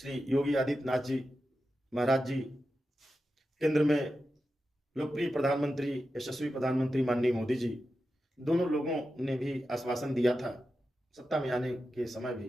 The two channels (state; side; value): normal; both; correlation 0.91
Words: योगी आदित्यनाथ जी महाराज जी केंद्र में लोकप्रिय प्रधानमंत्री, यशस्वी प्रधानमंत्री माननीय मोदी जी, दोनों लोगों ने भी आश्वासन दिया था सत्ता में आने के समय